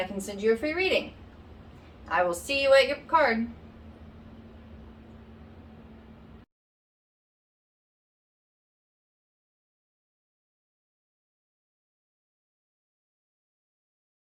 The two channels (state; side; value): identical; both; correlation 1.00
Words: can send you a free reading. I will see you at your card.